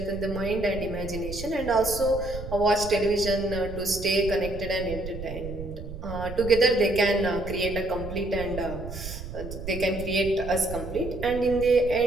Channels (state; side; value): noise; right; rumble, 9 dB below the sound